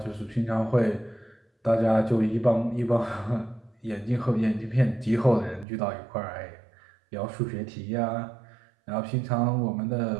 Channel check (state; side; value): drops out; left; at 5.7 s